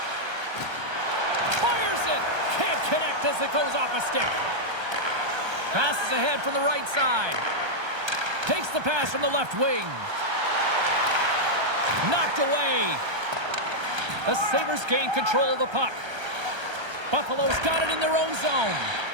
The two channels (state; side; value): late; left; 1.3 ms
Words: Fires it. Can't connect as it goes off a stick. Passes ahead from the right side. Takes the pass from the left wing. Knocked away. The Sabres gain control of the puck. Buffalo's got it in their own zone.